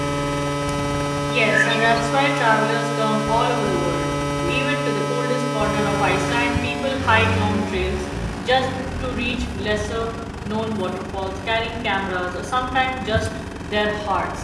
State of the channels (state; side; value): identical; both; correlation 1.00